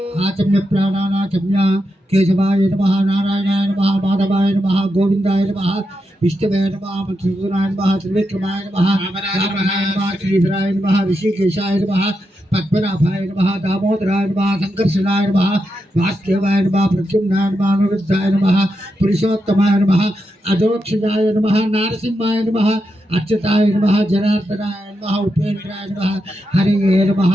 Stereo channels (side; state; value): both; normal; correlation 0.86